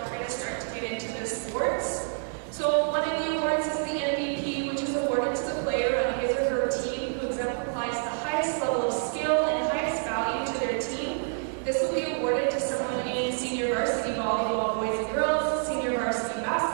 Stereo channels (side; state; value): left; silent; 59 dB below the other